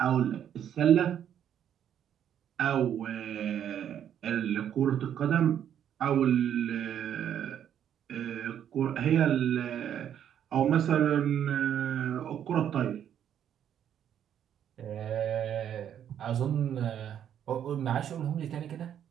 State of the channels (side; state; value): left; quieter; 9.6 dB